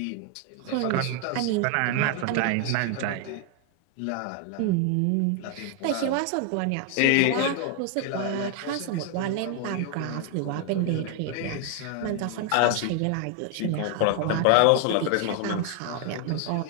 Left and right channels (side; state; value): both; different; correlation 0.00